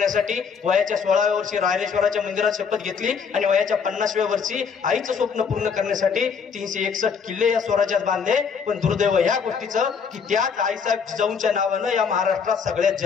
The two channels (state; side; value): quieter; right; 6.2 dB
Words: वयाच्या 16व्या वर्षी रायरेश्वराच्या मंदिरात शपथ घेतली आणि वयाच्या 50व्या वर्षी आईचं स्वप्न पूर्ण करण्यासाठी 361 किल्ले या स्वराज्यात बांधले. पण दुर्दैव या गोष्टीचं की त्याच आईसाहेब जिजाऊंच्या नावानं या महाराष्ट्रात सगळ्यात